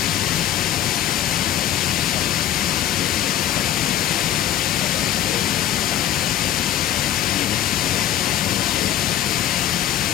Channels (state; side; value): quieter; right; 11.5 dB